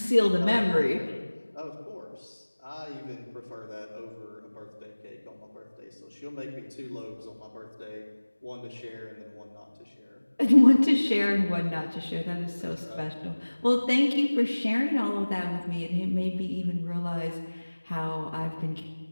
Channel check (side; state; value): both; inverted; correlation -1.00